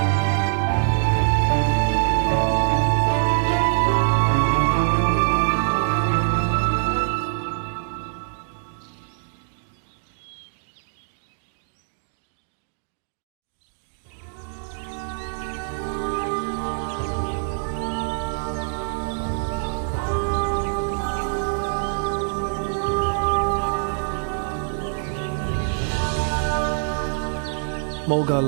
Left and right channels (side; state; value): left; silent; digital silence